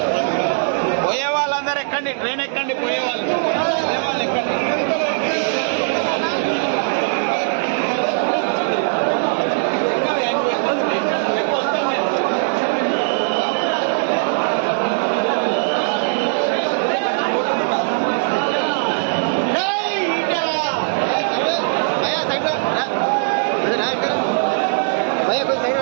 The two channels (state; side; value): silent; left; digital silence